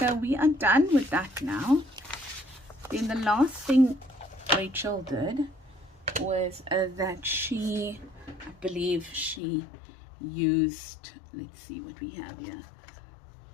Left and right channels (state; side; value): drops out; right; at 9.4 s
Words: we are done with that now. Then the last thing Rachel did was that she, I believe she used, let's see what we have here,